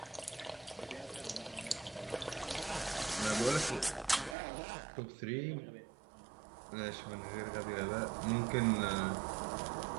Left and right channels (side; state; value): left; drops out; at 4.4 s